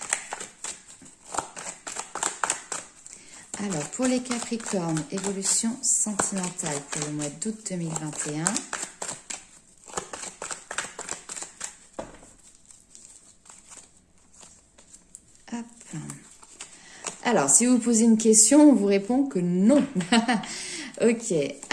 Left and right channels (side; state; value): both; identical; correlation 1.00